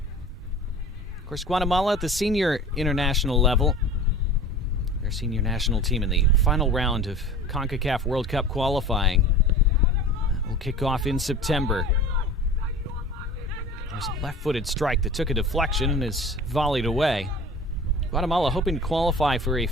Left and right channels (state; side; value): normal; both; correlation 0.39